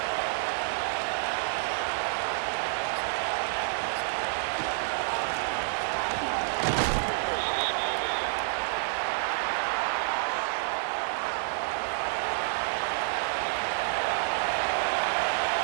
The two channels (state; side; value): silent; left; 59 dB below the other